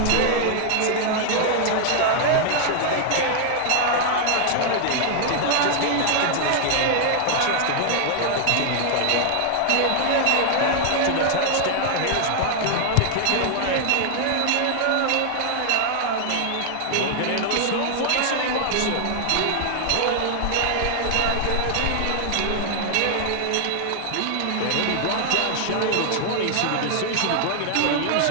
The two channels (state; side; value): different; both; correlation 0.00